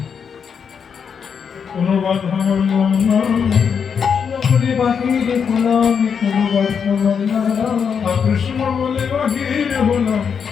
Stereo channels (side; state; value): right; quieter; 6.7 dB